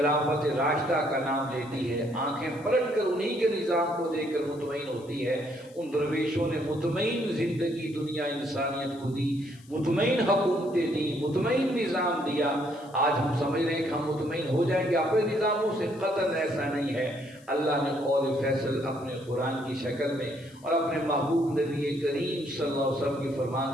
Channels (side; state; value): left; noise; hiss, 27 dB below the sound